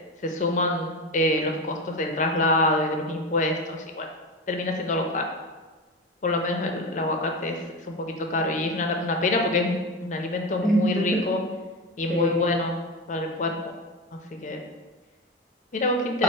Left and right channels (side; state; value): both; normal; correlation 0.21